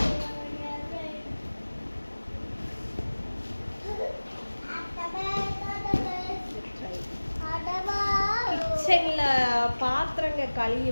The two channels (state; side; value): inverted; both; correlation -1.00